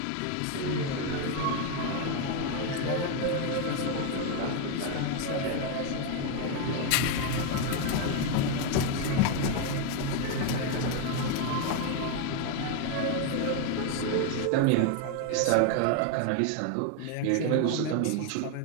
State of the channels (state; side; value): different; both; correlation 0.01